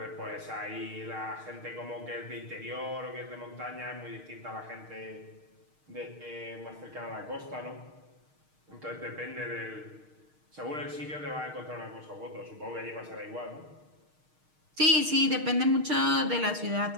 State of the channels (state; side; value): late; left; 6.5 ms